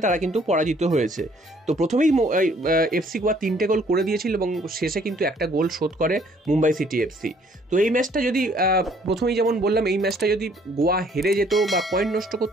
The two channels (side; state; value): both; normal; correlation 0.61